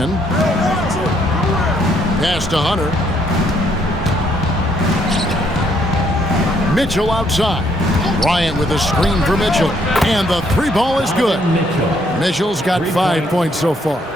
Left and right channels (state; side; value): normal; both; correlation 0.69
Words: Pass to Hunter. Mitchell outside. Bryant with a screen for Mitchell. And the three ball is good. Mitchell's got 5 points so far.